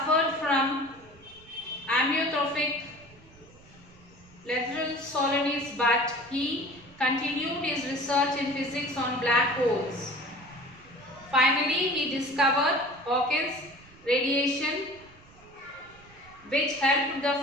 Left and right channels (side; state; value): right; noise; rumble, 25 dB below the sound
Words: from amyotrophic lateral sclerosis, but he continued his research in physics on black holes. Finally, he discovered Hawkins radiation, which helped the